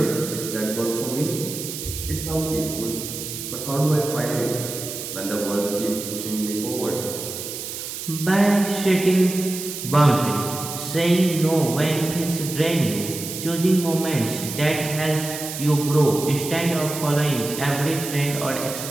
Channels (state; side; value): noise; right; hiss, 7 dB below the sound